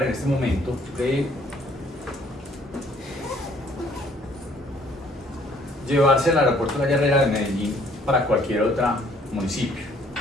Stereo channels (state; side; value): normal; both; correlation 0.61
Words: en este momento de llevarse al aeropuerto La Herrera de Medellín para cualquier otro municipio.